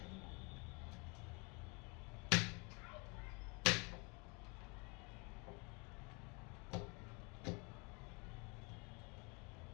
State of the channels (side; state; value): right; quieter; 30.9 dB